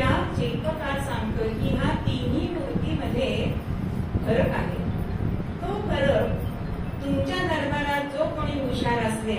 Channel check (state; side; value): identical; both; correlation 1.00